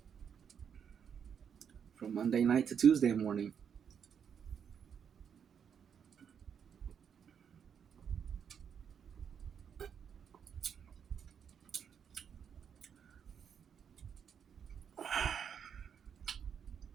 From Monday night to Tuesday morning.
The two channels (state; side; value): quieter; left; 7.6 dB